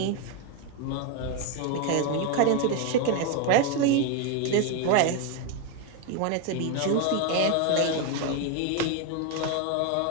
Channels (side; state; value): both; different; correlation 0.01